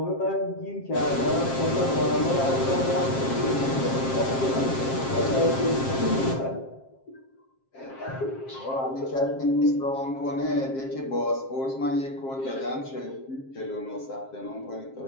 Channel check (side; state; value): right; late; 7.5 ms